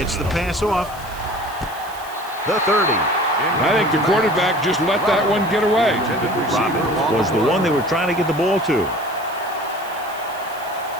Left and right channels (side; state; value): right; noise; hiss, 19 dB below the sound